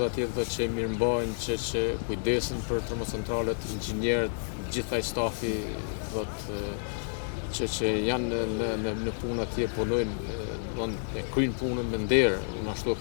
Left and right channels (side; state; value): right; silent; digital silence